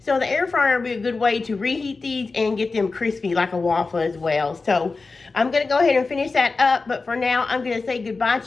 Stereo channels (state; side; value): quieter; right; 4.0 dB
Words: So the air fryer would be a good way to reheat these and get them crispy like a waffle as well. So I'm going to go ahead and finish that up. But for now, I'm going to say goodbye